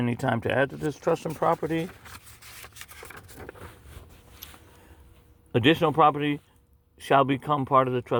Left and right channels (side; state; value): both; identical; correlation 1.00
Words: time to add to this trust and property. Additional property shall become part of the